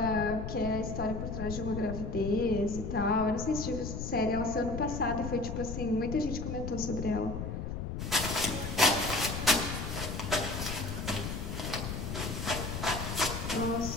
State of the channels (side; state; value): left; noise; rumble, 4 dB below the sound